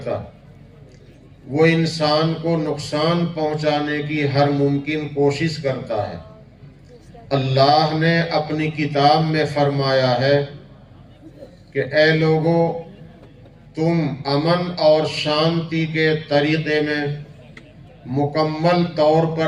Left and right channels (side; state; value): both; identical; correlation 1.00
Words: وہ انسان کو نقصان پہنچانے کی ہر ممکن کوشش کرتا ہے۔ اللہ نے اپنی کتاب میں فرمایا ہے کہ اے لوگو، تم امن اور شانتی کے طریقے میں مکمل طور